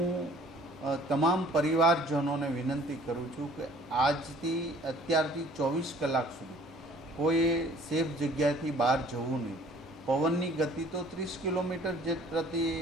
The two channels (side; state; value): both; normal; correlation 0.53